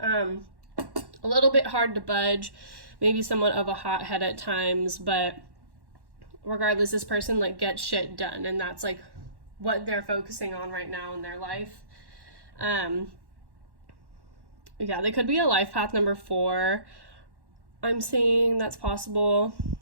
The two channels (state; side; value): late; left; 1.1 ms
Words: A little bit hard to budge, maybe somewhat of a hothead at times, but regardless, this person like gets shit done, and that's like what they're focusing on right now in their life. Yeah, they could be a life path number 4. I'm seeing that's possible.